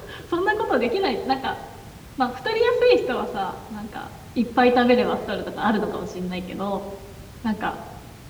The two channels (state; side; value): identical; both; correlation 1.00